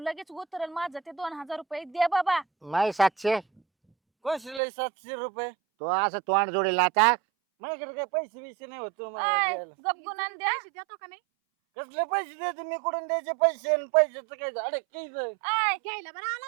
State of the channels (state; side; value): drops out; left; at 4.6 s